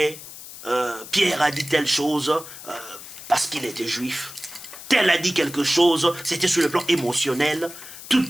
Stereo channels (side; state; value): left; noise; hiss, 14 dB below the sound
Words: Pierre a dit telle chose parce qu'il était juif. Tel a dit quelque chose, c'était sur le plan émotionnel. Toute